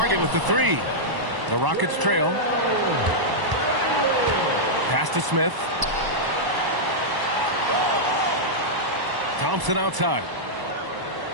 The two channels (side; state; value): left; late; 1.0 ms